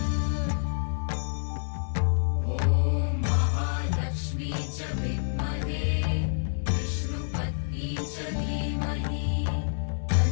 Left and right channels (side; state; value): right; silent; digital silence